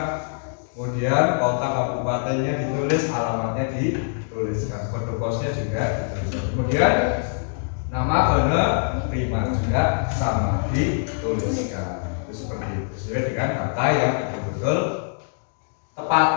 kemudian kota kabupatennya ditulis, alamatnya dituliskan, kode posnya juga dituliskan, kemudian nama penerima juga sama dituliskan. Itu seperti itu, sesuai dengan kata yang betul-betul tepat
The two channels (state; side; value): silent; right; digital silence